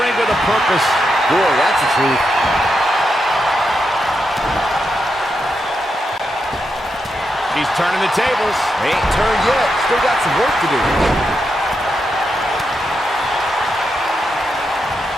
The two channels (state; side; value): normal; both; correlation 0.85